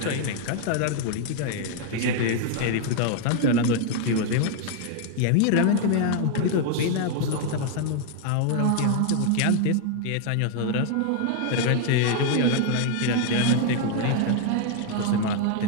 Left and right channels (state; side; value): different; both; correlation 0.00